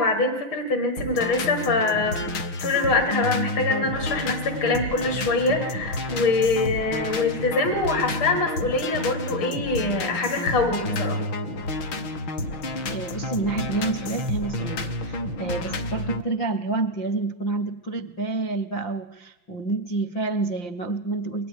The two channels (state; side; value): late; right; 5.9 ms